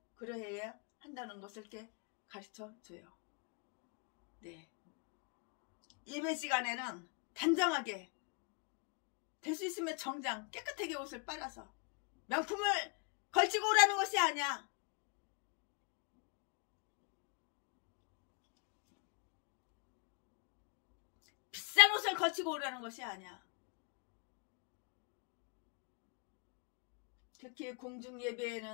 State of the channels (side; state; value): right; quieter; 34.3 dB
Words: 그러해야 한다는 것을 이렇게 가르쳐 줘요. 네. 예배 시간에는 단정하게 될 수 있으면 정장 깨끗하게 옷을 빨아서 명품을 걸치고 오라는 것이 아니야. 비싼 옷을 걸치고 오라는 것이 아니야. 특히 공중